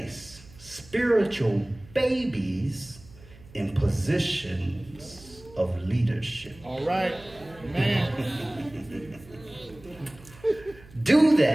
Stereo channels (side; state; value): right; noise; hum, 22 dB below the sound